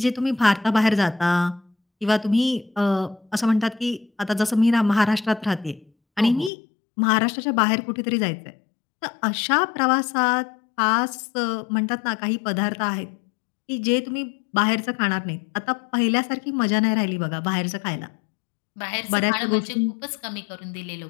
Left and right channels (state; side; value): drops out; right; at 6.5 s